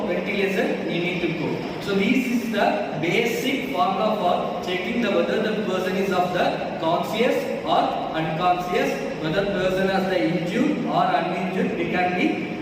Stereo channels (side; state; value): both; identical; correlation 1.00